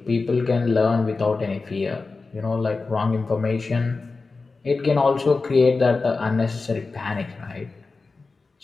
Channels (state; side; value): quieter; right; 4.0 dB